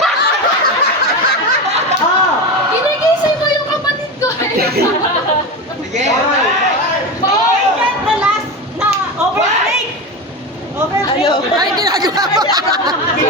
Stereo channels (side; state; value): both; normal; correlation 0.21